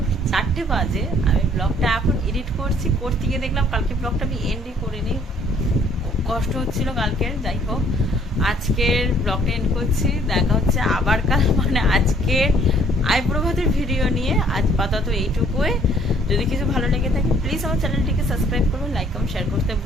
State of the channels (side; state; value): both; normal; correlation 0.60